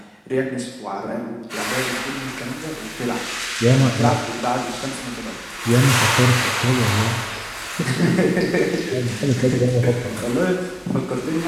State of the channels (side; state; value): both; identical; correlation 1.00